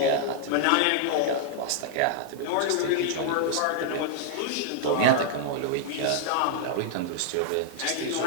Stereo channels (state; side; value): different; both; correlation -0.01